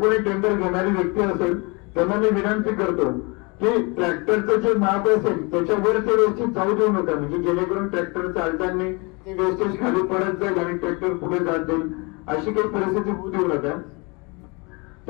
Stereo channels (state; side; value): quieter; right; 29.2 dB